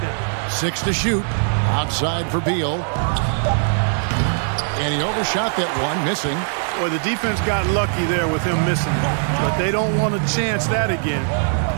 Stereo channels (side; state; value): left; silent; 65 dB below the other